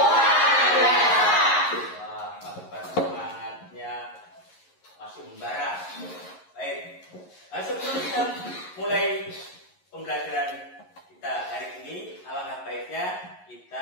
luar biasa. Wah, pagi-pagi semangatnya masih membara. Baik, sebelum kita mulai pembelajaran kita hari ini, alangkah baiknya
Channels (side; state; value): right; late; 11 ms